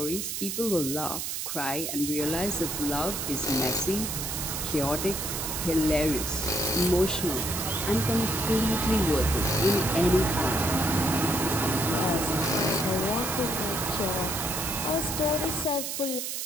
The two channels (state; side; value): noise; right; hiss, 4 dB below the sound